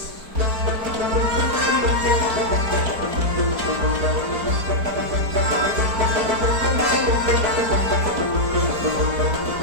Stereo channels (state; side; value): late; left; 4.5 ms